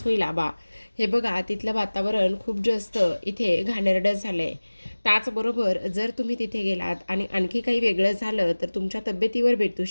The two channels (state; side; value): inverted; both; correlation -1.00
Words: होईल आबा. हे बघा तिथलं वातावरण खूप जास्त इथे घाणेरडं झालं आहे. त्याचबरोबर जर तुम्ही तिथे गेलात आणि आणखी काही वेगळं झालं तर तुमच्या तब्येतीवर भेटू